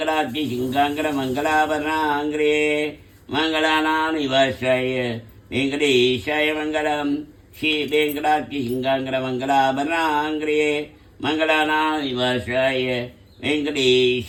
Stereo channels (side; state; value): both; identical; correlation 1.00